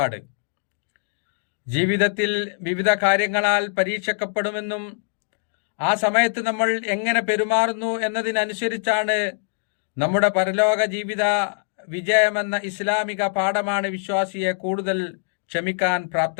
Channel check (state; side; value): silent; right; digital silence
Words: ജീവിതത്തിൽ വിവിധ കാര്യങ്ങളാൽ പരീക്ഷിക്കപ്പെടുമെന്നും ആ സമയത്ത് നമ്മൾ എങ്ങനെ പെരുമാറുന്നു എന്നതിനനുസരിച്ചാണ് നമ്മുടെ പരലോക ജീവിത വിജയമെന്ന ഇസ്ലാമിക പാഠമാണ് വിശ്വാസിയെ കൂടുതൽ ക്ഷമിക്കാൻ